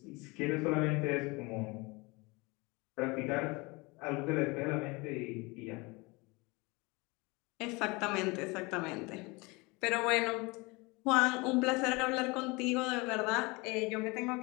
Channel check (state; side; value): quieter; right; 25.8 dB